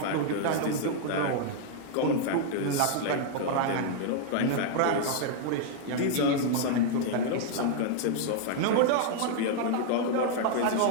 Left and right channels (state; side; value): different; both; correlation 0.00